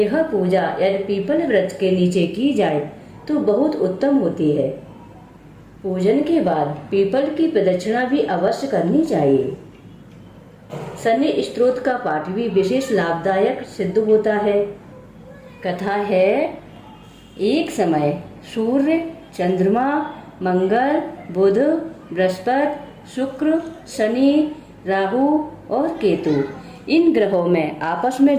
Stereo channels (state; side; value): identical; both; correlation 1.00